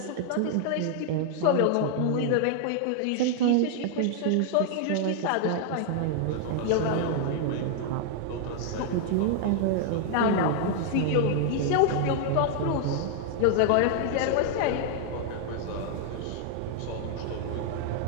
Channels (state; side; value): different; both; correlation 0.00